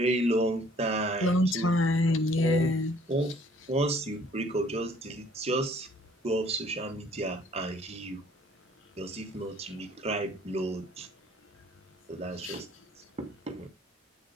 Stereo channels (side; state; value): both; normal; correlation 0.58